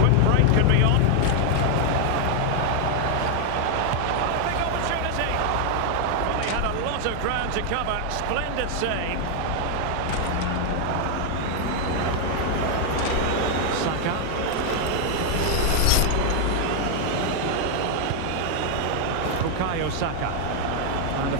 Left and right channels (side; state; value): both; different; correlation 0.00